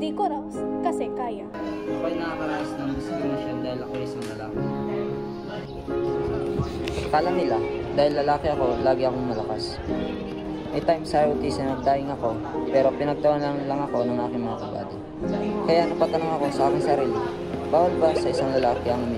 Di ko raw kasi kaya. Ako ay nakakaranas ng diskriminasyon dahil ako ay isang lalaki. Akala nila, dahil lalaki ako, lagi akong malakas. May time sa ROTC na nagdaing ako, pero pinagtawanan lang ako ng aking mga kabady. Kaya napatanong ako sa aking sarili, bawal ba sa isang lalaki ang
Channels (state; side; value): identical; both; correlation 1.00